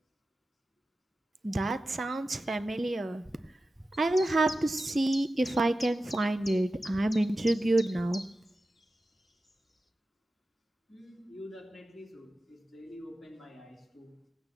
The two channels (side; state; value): both; normal; correlation 0.93